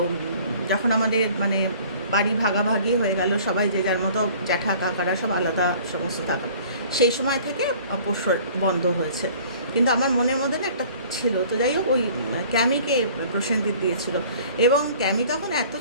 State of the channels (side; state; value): both; inverted; correlation -0.50